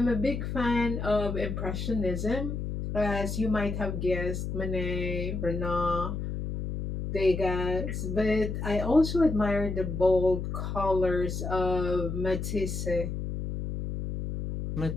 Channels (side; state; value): left; noise; hum, 4 dB below the sound